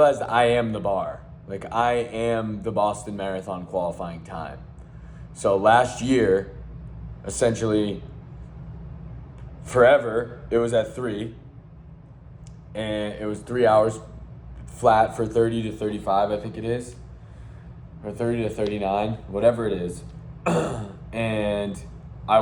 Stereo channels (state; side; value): identical; both; correlation 1.00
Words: I am the bar. Like, I am the Boston Marathon qualifying time. So last year, essentially forever, it was at 3, and it was 3 hours flat for 30 to 35, I think it is, or 30 to 39, whatever it is. And I